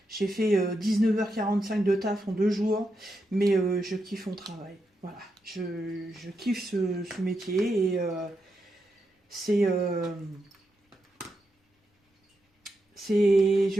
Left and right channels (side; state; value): both; normal; correlation 0.85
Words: J'ai fait 19h45 de taf en 2 jours, mais je kiffe mon travail. Voilà, je kiffe ce métier et